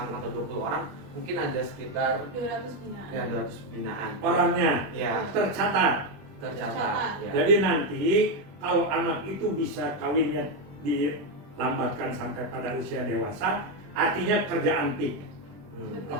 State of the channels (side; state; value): left; late; 20 ms